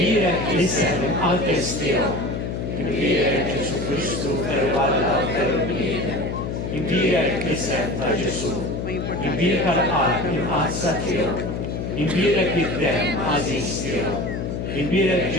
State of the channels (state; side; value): noise; left; hum, 4 dB below the sound